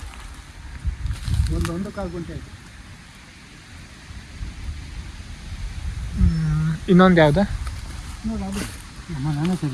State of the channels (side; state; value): both; identical; correlation 1.00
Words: ಒಂದು ಕಾಲು ಗುಂಟೆ ಆಯ್ತು. ಇನ್ನೊಂದು ಯಾವ್ದು? ನೋಡಿ ಅದು ನಮ್ಮ ನಾನೇ